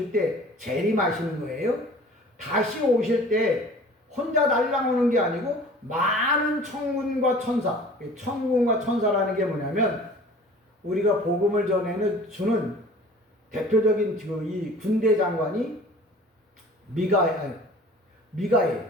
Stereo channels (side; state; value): both; normal; correlation 0.46